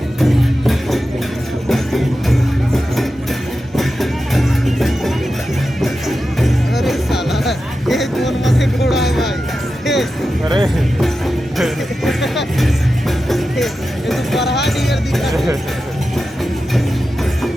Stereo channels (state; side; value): normal; both; correlation 0.92